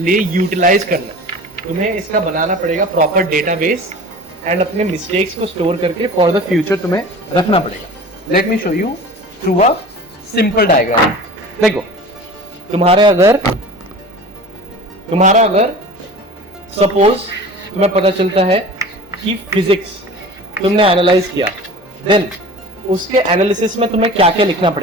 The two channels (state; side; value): normal; both; correlation 0.39